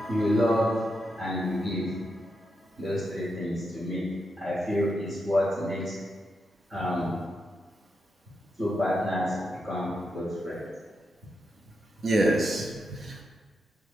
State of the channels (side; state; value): both; normal; correlation 0.84